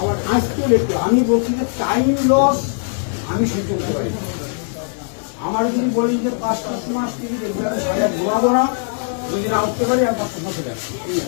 আজকেও লিখতে আমি বলছি যে টাইম লস আমি সহ্য করতে পারি। আমার যদি বলি যে 5-7 মাস থেকে দেখবে আমি সাজা ঘুমাবো না, যদি না উঠতে পারি আর 10 মাস হয়ে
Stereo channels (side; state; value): right; silent; digital silence